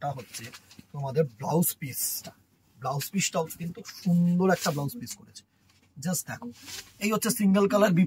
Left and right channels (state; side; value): identical; both; correlation 1.00